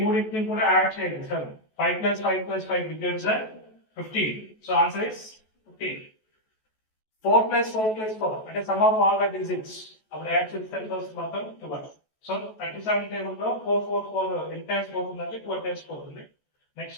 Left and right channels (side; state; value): right; late; 14 ms